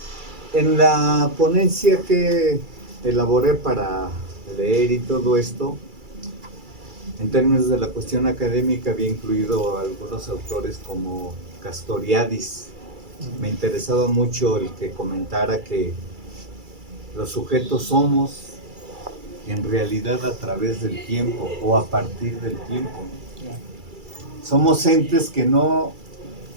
En la ponencia que elaboré para leer y todo esto, en términos de la cuestión académica, había incluido algunos autores como Castoriadis. Me interesaba mucho el que comentara que los sujetos somos en realidad a través del tiempo o a partir del tiempo. Somos entes que no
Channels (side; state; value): left; late; 2.3 ms